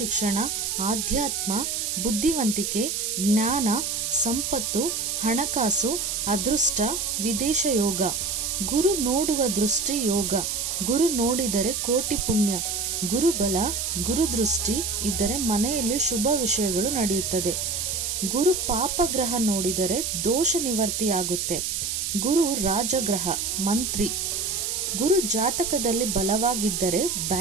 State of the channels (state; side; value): noise; right; hiss, 1 dB below the sound